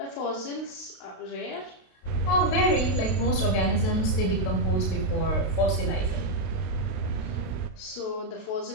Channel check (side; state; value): right; late; 32 ms